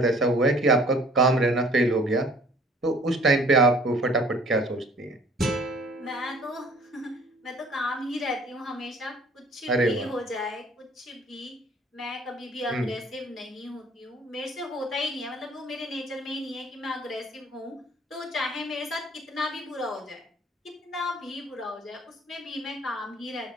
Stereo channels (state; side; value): normal; both; correlation 0.53